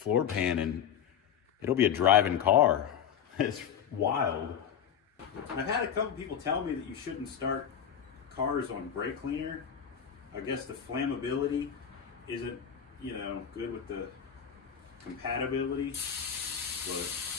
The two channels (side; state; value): right; quieter; 8.4 dB